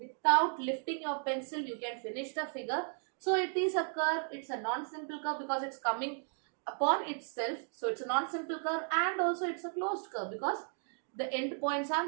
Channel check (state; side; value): silent; left; 54 dB below the other